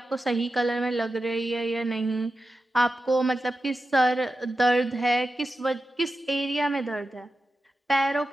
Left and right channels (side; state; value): both; normal; correlation 0.91